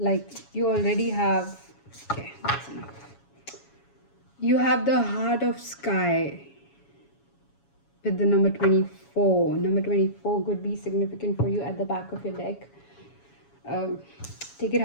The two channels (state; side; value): late; right; 7.2 ms